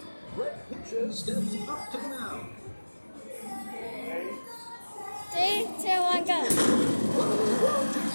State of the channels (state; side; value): inverted; both; correlation -1.00